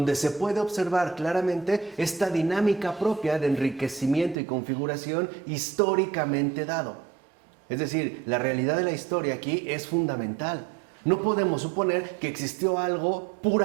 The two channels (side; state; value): left; drops out; at 4.4 s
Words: se puede observar claramente esta dinámica propia de enriquecimiento y configuración históricamente dado. Es decir, la realidad de la historia aquí es fundamental. No podemos suponer que existió algo